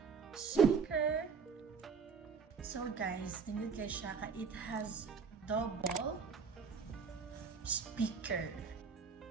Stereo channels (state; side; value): quieter; left; 5.8 dB